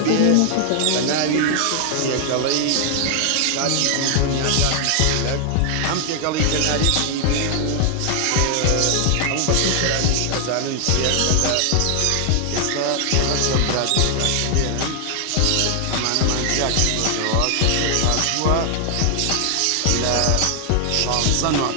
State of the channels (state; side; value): different; both; correlation 0.00